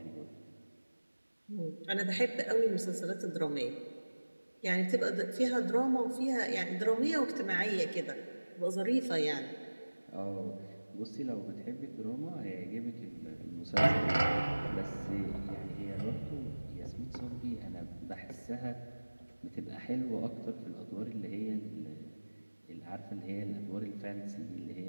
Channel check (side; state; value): both; inverted; correlation -1.00